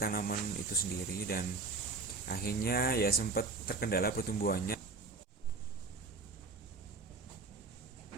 itu sendiri, dan akhirnya ya sempat terkendala pertumbuhannya.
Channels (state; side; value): quieter; left; 3.9 dB